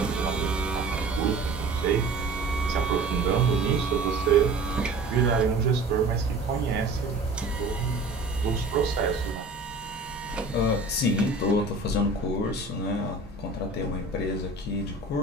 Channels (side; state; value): left; quieter; 3.2 dB